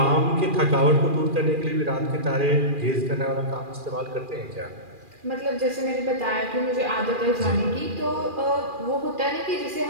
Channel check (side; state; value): left; late; 2.4 ms